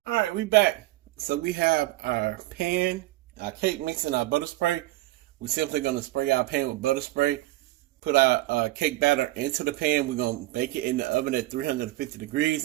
Alright, we back. So we have our pan, our cake mix, and our butter spray. We're simply going to spray our pan with butter spray. Put our cake batter into the pan. We're going to bake it in the oven at 350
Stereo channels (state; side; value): quieter; left; 17.5 dB